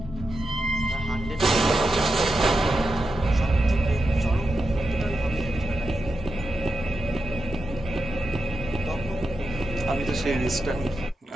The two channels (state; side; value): normal; both; correlation 0.88